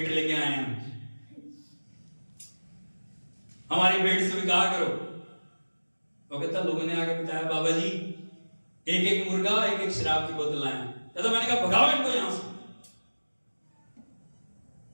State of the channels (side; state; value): both; inverted; correlation -1.00